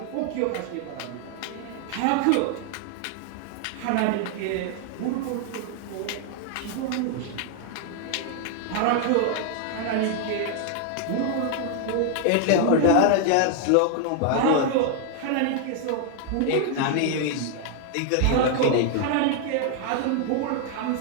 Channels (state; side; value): different; both; correlation 0.00